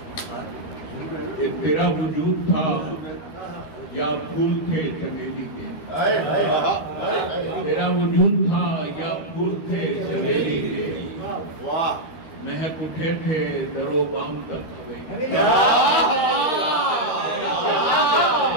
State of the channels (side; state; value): right; late; 13 ms